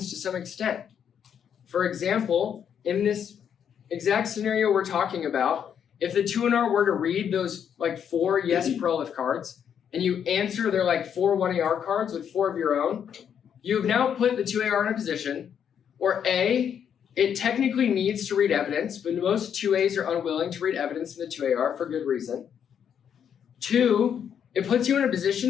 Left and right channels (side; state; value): right; quieter; 8.3 dB